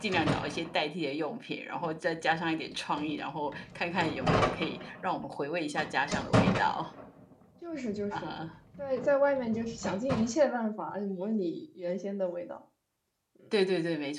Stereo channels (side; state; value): both; identical; correlation 1.00